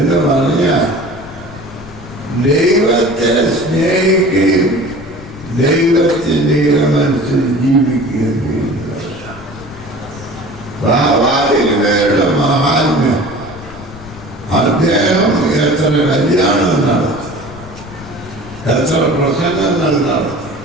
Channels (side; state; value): left; noise; rumble, 16 dB below the sound